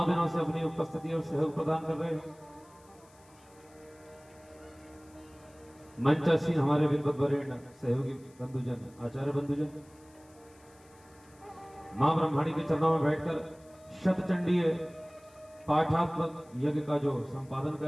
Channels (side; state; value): left; noise; hiss, 29 dB below the sound